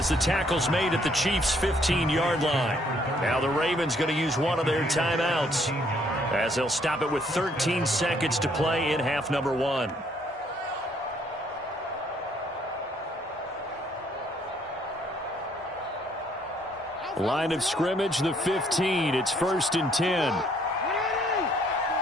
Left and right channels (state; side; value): normal; both; correlation 0.66